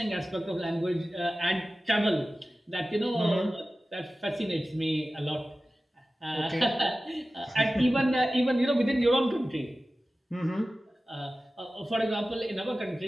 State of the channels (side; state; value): both; normal; correlation 0.95